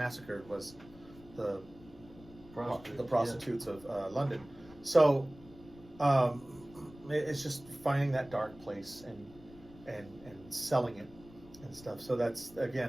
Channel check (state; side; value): noise; left; rumble, 21 dB below the sound